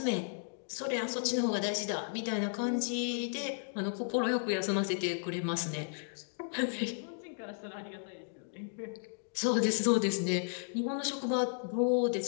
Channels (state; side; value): silent; right; digital silence